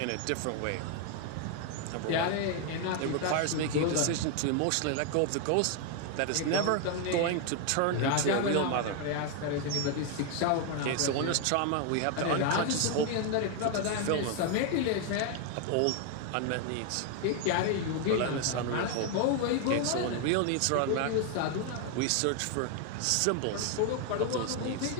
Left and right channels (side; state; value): both; different; correlation 0.00